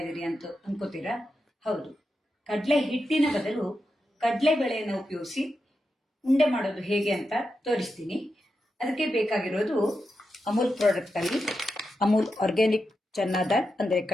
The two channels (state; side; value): normal; both; correlation 0.88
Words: ಇದ್ದೀರಿ ಅಂತ ಅನ್ಕೋತೀರಾ? ಹೌದು, ಕಡಲೆ ಹಿಟ್ಟಿನ ಬದಲು ಕಡಲೆಬೇಳೆಯನ್ನು ಉಪಯೋಗಿಸಿ ಉಂಡೆ ಮಾಡೋದು ಹೇಗೆ ಅಂತ ತೋರಿಸ್ತೀನಿ. ಅದಕ್ಕೆ ಬೇಕಾಗಿರೋದು ಅಮೂಲ್ ಪ್ರಾಡಕ್ಟ್ ಅಲ್ಲಿ ಅಮೂಲ್ ಆರ್ಗ್ಯಾನಿಕ್ ಚನ್ನಾ ದಾಲ್ ಅಂದರೆ